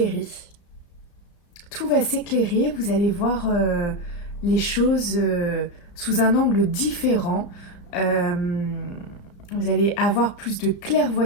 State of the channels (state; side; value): late; right; 35 ms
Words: Tout va s'éclairer, vous allez voir les choses sous un angle différent. Vous allez avoir plus de